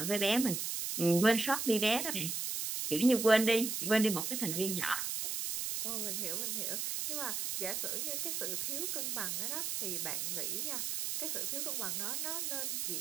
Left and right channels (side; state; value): right; noise; hiss, 2 dB below the sound